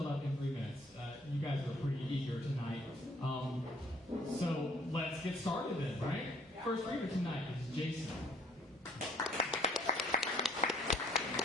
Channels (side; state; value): both; normal; correlation 0.60